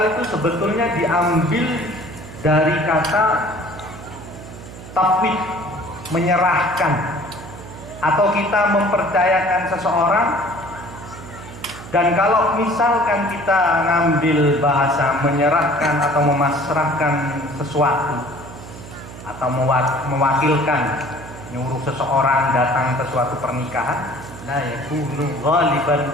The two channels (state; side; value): noise; right; hum, 15 dB below the sound